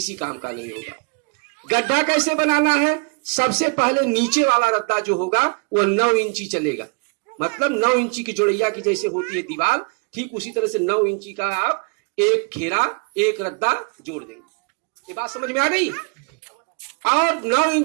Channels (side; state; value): left; quieter; 33.4 dB